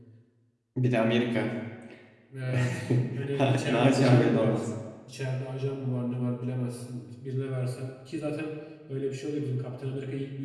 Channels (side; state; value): both; identical; correlation 1.00